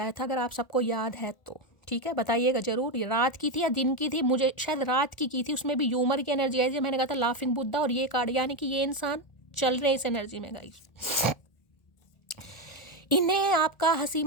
था, अगर आप सबको याद है तो ठीक है बताइएगा जरूर, ये रात की थी या दिन की थी, मुझे शायद रात की थी, उसमें भी ह्यूमर की एनर्जी आई थी। मैंने कहा था लाफिंग बुद्धा, और ये कार्ड यानी कि ये इंसान चल रहे इस एनर्जी में गाइस। इन्हें आपका हंसी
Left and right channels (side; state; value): right; late; 1.7 ms